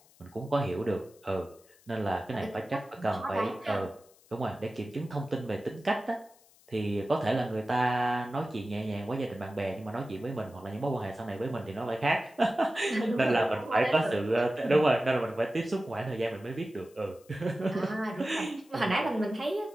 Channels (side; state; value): left; noise; hiss, 28 dB below the sound